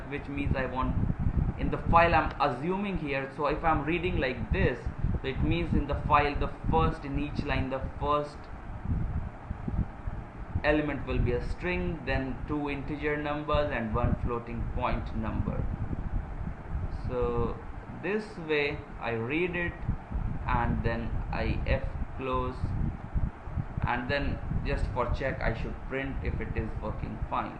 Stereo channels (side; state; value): both; identical; correlation 1.00